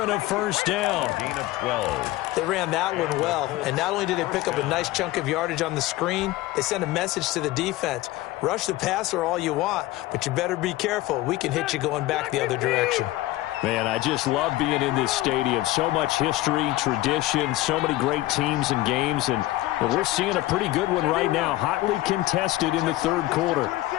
and a 1st down. Gain of 12. They ran that one well, and not only did they pick up a nice chunk of yardage on the screen, they sent a message to the defense. Rush the passer all you want, but you better be careful. We can hit you going back the other direction. Man, I just love being in this stadium. So much history, tradition, so many great teams and games, and we're seeing a pretty good one right now. Hotly contested in the 3rd quarter.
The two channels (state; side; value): quieter; right; 17.1 dB